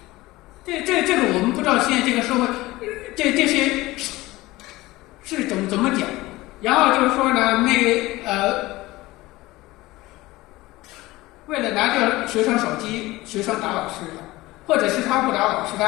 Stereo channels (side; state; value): right; quieter; 19.2 dB